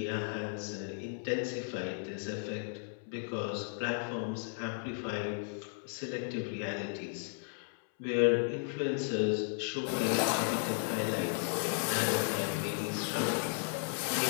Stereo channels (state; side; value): silent; right; 55 dB below the other